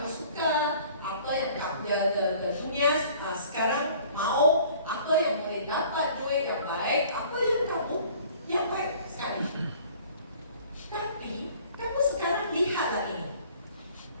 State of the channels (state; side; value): inverted; both; correlation -0.52